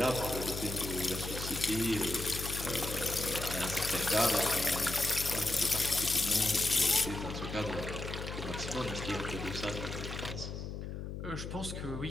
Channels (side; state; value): left; noise; hum, 6 dB below the sound